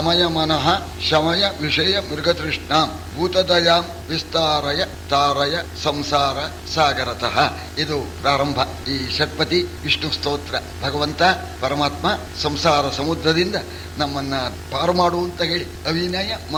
ಮನಃ ಶಮಯ ವಿಷಯ ಮೃಗತೃಷ್ಣಾಂ ಭೂತದಯಾಂ ವಿಸ್ತಾರಯ ತಾರಯ ಸಂಸಾರ ಸಾಗರತಃ. ಇದು ಪ್ರಾರಂಭ ಈ ಷಟ್ಪದಿ ವಿಷ್ಣು ಸ್ತೋತ್ರ. ಭಗವಂತ ಪರಮಾತ್ಮ ಸಂಸಾರ ಸಮುದ್ರದಿಂದ ನಮ್ಮನ್ನ ಪಾರು ಮಾಡು ಅಂತ ಹೇಳಿ ಅವಿನಯ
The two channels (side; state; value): both; identical; correlation 1.00